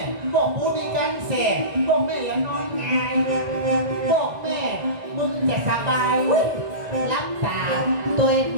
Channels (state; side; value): late; left; 1.9 ms